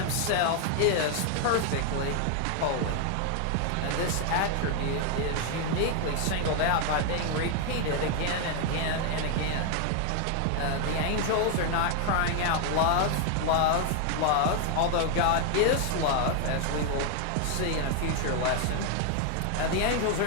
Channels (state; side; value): different; both; correlation 0.00